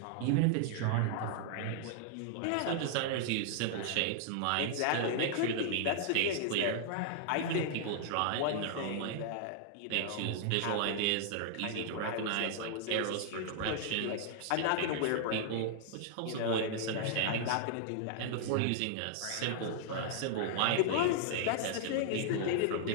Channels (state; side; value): different; both; correlation -0.01